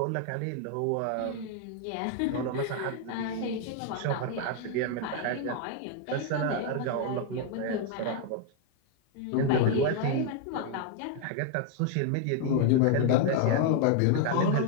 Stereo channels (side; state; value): both; different; correlation 0.00